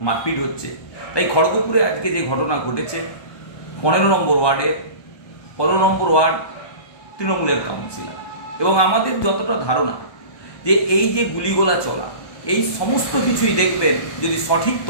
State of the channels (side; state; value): right; late; 1.2 ms